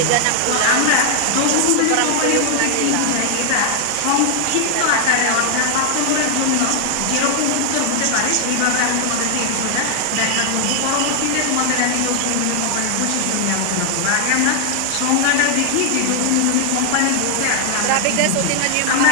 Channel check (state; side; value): different; both; correlation 0.00